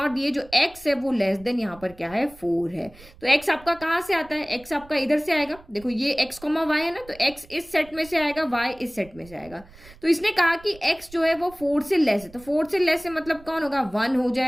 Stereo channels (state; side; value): noise; right; rumble, 22 dB below the sound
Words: दी है, जो x है वो लेस देन यहाँ पर क्या है? 4 है। तो x आपका कहाँ से आता है? x आपका इधर से आएगा। देखो ये x, y है ना, तो x इस सेट में से आएगा, y इस सेट में से आएगा। तो इसने कहा कि x जो है वो 4 से लेस है। तो 4 से लेस है मतलब कौन होगा? 1 हो